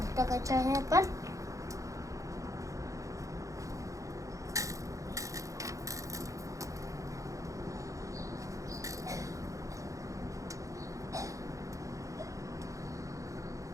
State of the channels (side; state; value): left; late; 0.16 ms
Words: टाकायची आहे आपण.